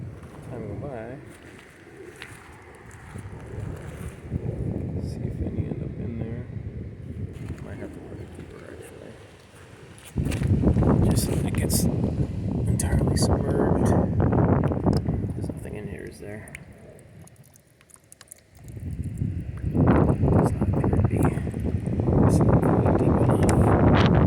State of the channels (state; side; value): identical; both; correlation 1.00